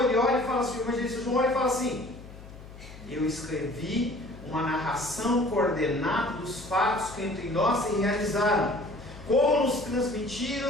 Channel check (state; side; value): noise; left; hum, 16 dB below the sound